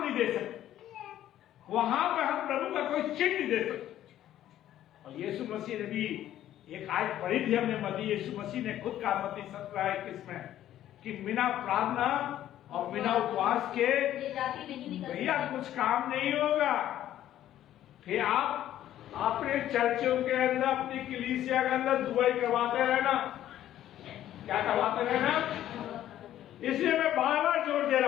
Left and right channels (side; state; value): right; quieter; 12.3 dB